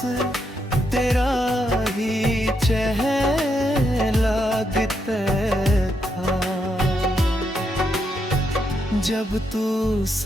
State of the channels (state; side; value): normal; both; correlation 0.80